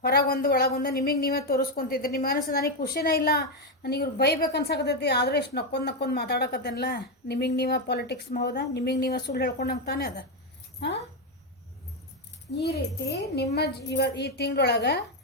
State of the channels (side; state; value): both; normal; correlation 0.05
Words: ಹೊರಗೊಂದು ಒಳಗೊಂದು ನಿಮಗೆ ನೀವೇ ತೋರಿಸ್ಕೊತಿದ್ರಿ. ನಿಮ್ಮ ಮನಸ್ಸು ನನಗೆ ಖುಷಿನೇ ಇಲ್ಲ, ನನಗೆ ಇವ್ರು ಬೈಬೇಕು ಅನ್ಸಕತ್ತೈತಿ, ಆದರೂ ಎಷ್ಟು ನಕ್ಕೊಂಡು ಮಾತಾಡಕತ್ತೇನಲ್ಲ, ನಿಮಗೆ ನೀವೇ ಪಾಲಿಟಿಕ್ಸ್ ಹೌದಾ, ನಿಮಗೆ ನೀವೇ ಸುಳ್ಳು ಹೇಳ್ಕೊಂಡಂಗೆ ತಾನೇ ಅದ. ಈ ರೀತಿ ನಿಮ್ಮ ಈ ತಿಂಗಳೊಳಗೆ